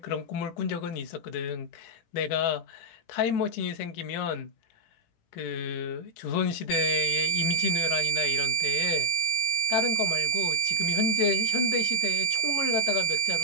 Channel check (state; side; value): late; right; 18 ms